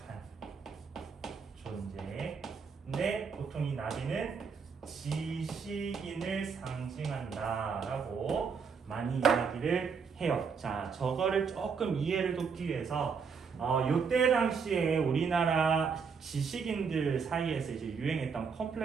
존재. 근데 보통 이 나비는 지식인을 상징한다라고 많이 이야기를 해요. 자, 저거를 조금 이해를 돕기 위해서 요때 당시에 우리나라 지식인들 사이에서 이제 유행했던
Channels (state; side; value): quieter; left; 5.8 dB